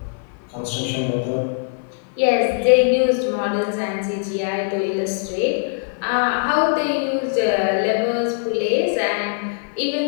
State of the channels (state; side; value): silent; right; 57 dB below the other